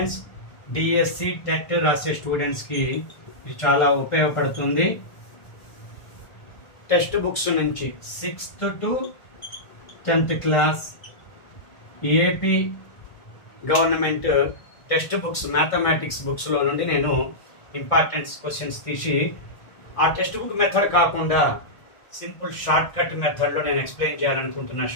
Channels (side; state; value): right; late; 1.4 ms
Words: డిఎస్సి టెట్ రాసే స్టూడెంట్స్కి ఇది చాలా ఉపయోగపడుతుంది. టెక్స్ట్ బుక్స్ నుంచి 6th to 10th class AP government text books mathematics బుక్స్లో నుండి నేను ఇంపార్టెంట్ క్వశ్చన్స్ తీసి ఆ టెక్స్ట్ బుక్ మెథడ్ కాకుండా సింపుల్ షార్ట్ కట్ మెథడ్లో నేను ఎక్స్ప్లెయిన్ చేయాలనుకుంటున్నా.